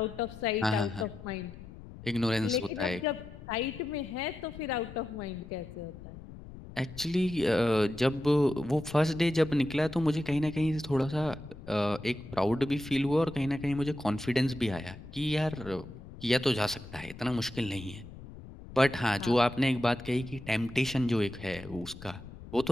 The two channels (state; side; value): noise; left; rumble, 15 dB below the sound